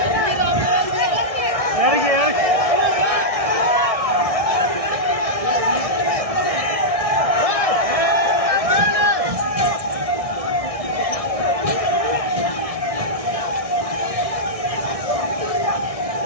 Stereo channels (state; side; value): late; left; 1.6 ms